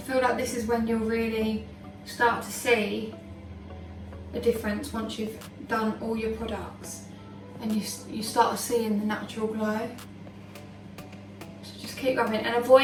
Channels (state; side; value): identical; both; correlation 1.00